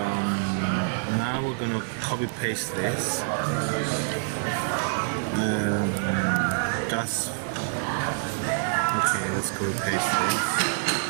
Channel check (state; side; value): silent; left; digital silence